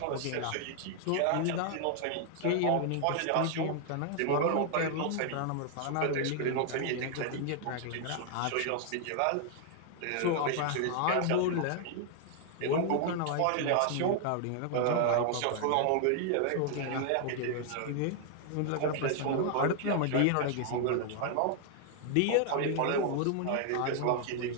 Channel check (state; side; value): different; both; correlation 0.00